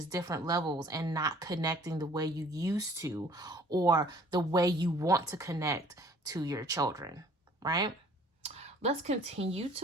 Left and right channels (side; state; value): both; normal; correlation 0.54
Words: different levels, and not connecting the way you used to or the way you want to connect to your children, right? Let's continue